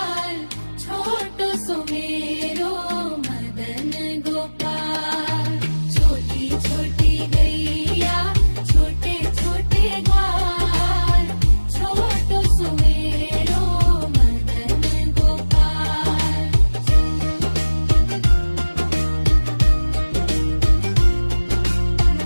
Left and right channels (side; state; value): both; inverted; correlation -1.00